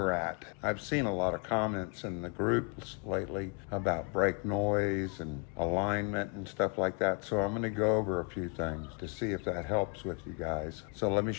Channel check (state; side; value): quieter; right; 37.2 dB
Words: at. I've seen a lot of comments in the groups lately about brake noise and alignment and stuff like that, so I'm going to go over a few things to see if that helps with you guys. So let me